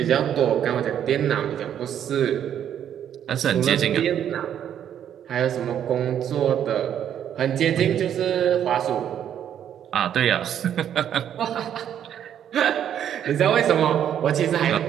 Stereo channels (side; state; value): left; quieter; 9.7 dB